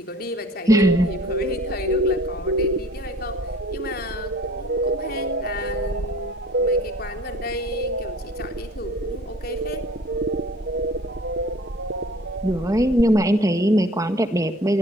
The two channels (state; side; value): normal; both; correlation 0.49